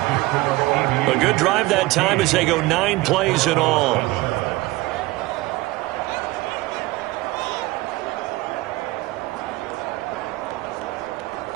A good drive that time as they go 9 plays in all.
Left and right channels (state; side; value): quieter; left; 19.9 dB